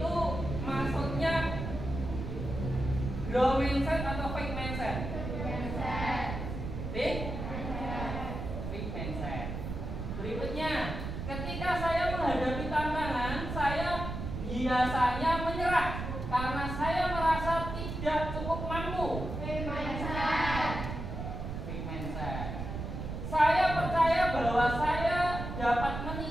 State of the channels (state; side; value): noise; right; rumble, 5 dB below the sound